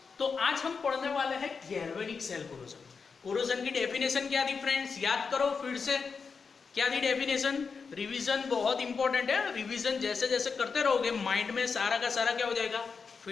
तो आज हम पढ़ने वाले हैं गैल्वेनिक सेल कोरोजन। कोरोजन की डेफिनेशन क्या थी फ्रेंड्स? याद करो फिर से, क्या थी डेफिनेशन? रिवीजन बहुत इंपॉर्टेंट है। रिवीजन जैसे जैसे करते रहोगे माइंड में सारा का सारा क्या हो जाएगा,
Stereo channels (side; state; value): right; quieter; 5.3 dB